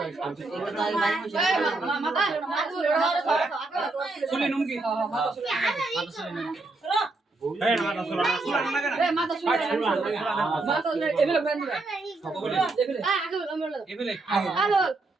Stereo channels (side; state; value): left; quieter; 3.3 dB